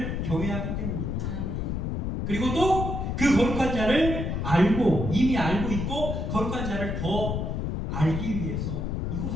경외하기 때문입니다. 아멘. 그리고 또 그 거룩한 자를 알고, 이미 알고 있고 거룩한 자를 더 알기 위해서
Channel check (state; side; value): noise; left; rumble, 2 dB below the sound